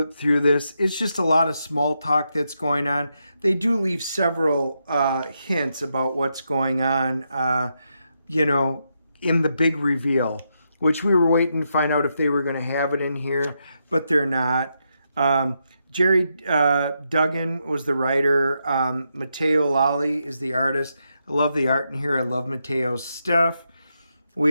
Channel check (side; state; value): both; inverted; correlation -0.83